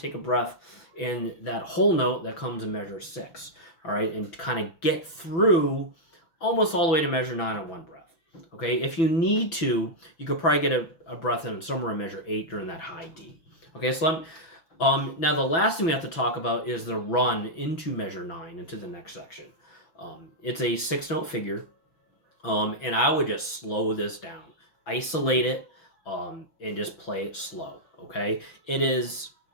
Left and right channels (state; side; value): late; right; 6.0 ms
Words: take a breath in that whole note that comes in measure 6. All right, and kind of get through almost all the way to measure 9 on one breath. Okay, if you need to, you could probably get a breath in somewhere in measure 8 during that high D. Okay, so now the last thing we have to talk about is the run into measure 9, into the next section. It's a 6-note figure. And I would just slow this down, isolate it, and just play it slow. Okay, it is